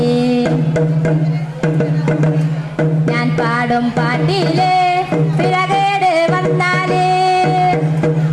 ഞാൻ പാടും പാട്ടില് പിഴകേട് വന്നാലേ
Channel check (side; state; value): both; identical; correlation 1.00